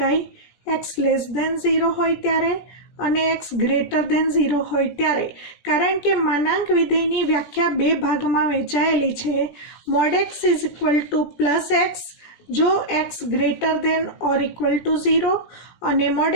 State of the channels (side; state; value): right; late; 17 ms